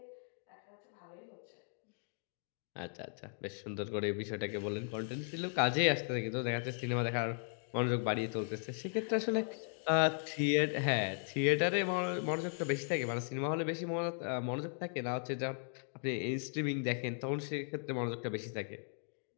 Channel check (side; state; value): right; silent; 53 dB below the other